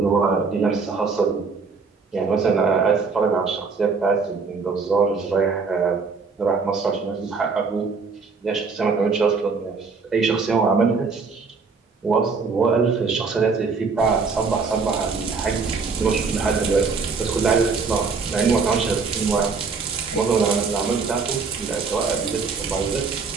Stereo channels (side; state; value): left; quieter; 4.8 dB